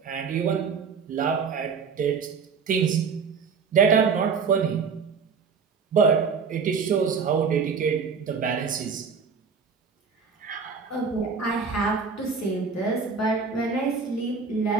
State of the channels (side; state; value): left; quieter; 5.6 dB